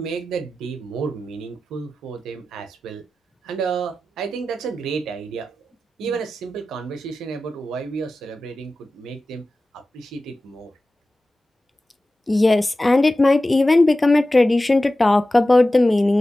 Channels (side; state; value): both; normal; correlation 0.95